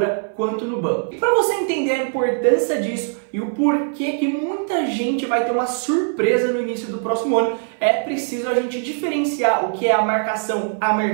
quanto no banco. E para você entender a importância disso e o porquê que muita gente vai ter uma surpresa no início do próximo ano, é preciso a gente diferenciar o que é a marcação a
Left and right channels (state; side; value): silent; left; 60 dB below the other